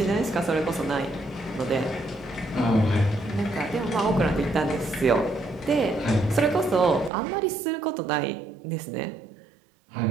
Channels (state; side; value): drops out; left; at 7.1 s